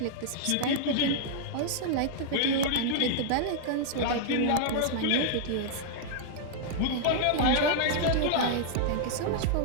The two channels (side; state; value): both; different; correlation -0.01